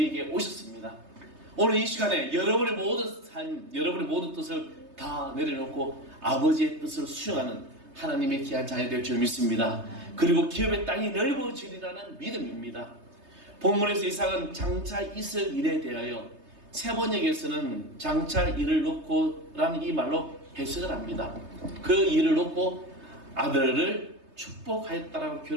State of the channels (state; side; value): late; left; 3.3 ms